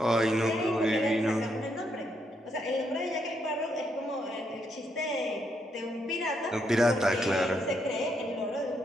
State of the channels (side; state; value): both; normal; correlation 0.77